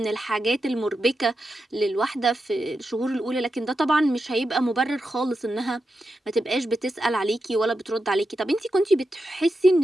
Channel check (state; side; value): normal; both; correlation 0.88